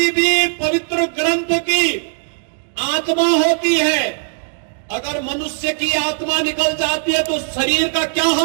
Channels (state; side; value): silent; left; digital silence